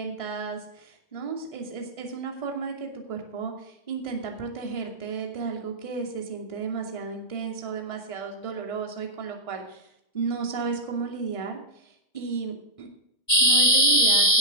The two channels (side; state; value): right; late; 1.6 ms